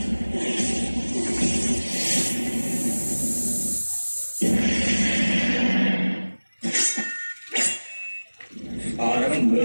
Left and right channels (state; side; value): inverted; both; correlation -1.00